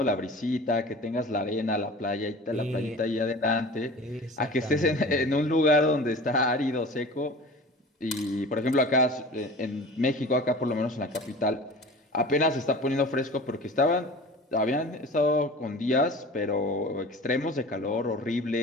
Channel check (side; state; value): both; normal; correlation 0.39